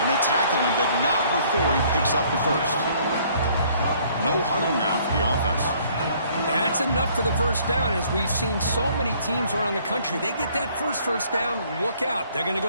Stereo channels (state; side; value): inverted; both; correlation -0.60